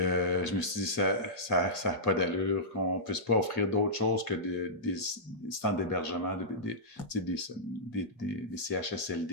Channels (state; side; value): late; right; 8.4 ms